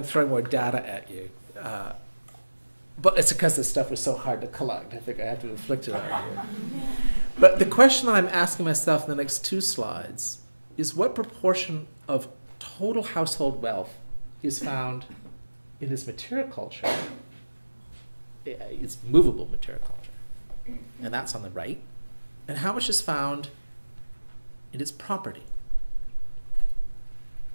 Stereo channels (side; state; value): both; inverted; correlation -1.00